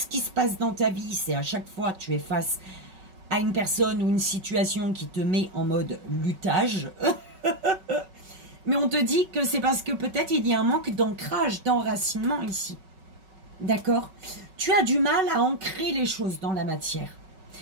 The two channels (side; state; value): left; late; 5.3 ms